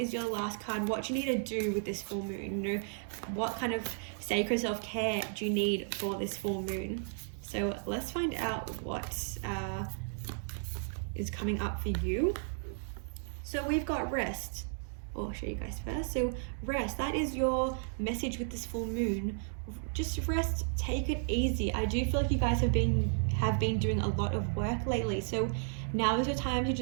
your last card, what you need to do with this full moon. You know, what kind of sacred self-care do you need for this full moon? So let's find out what is coming up for you. So we've got rest. I'll show you guys first. So rest, that is your message with this full moon. Just rest, take it easy. I do feel like you guys have been doing a lot of work lately, so now is your time to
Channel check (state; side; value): silent; left; digital silence